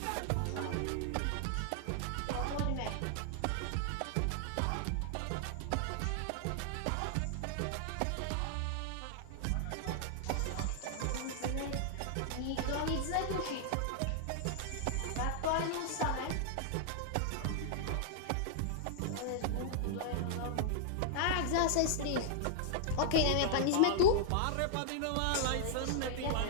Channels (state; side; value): different; both; correlation -0.01